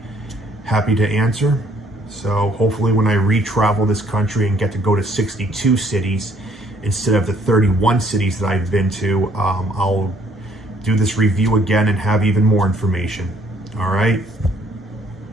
happy to answer. So hopefully when I re-travel this country and get to go to 62 cities instead of the 31 cities that I've been to, I'll do this review again and have even more information. All right?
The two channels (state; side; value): normal; both; correlation 0.63